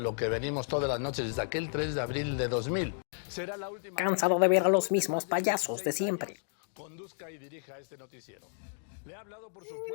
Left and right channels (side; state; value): right; silent; digital silence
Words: que venimos todas las noches desde aquel 3 de abril de 2000. Será la última... Cansado de ver a los mismos payasos de siempre. Conduzca y dirija este noticiero. Le ha hablado, por